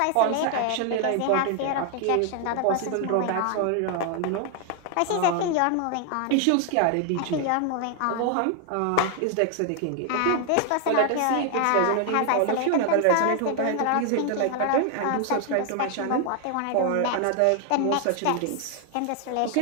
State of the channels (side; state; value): both; different; correlation 0.00